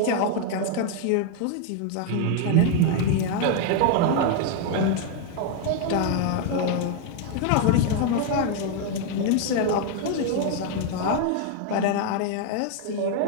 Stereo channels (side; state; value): both; different; correlation 0.00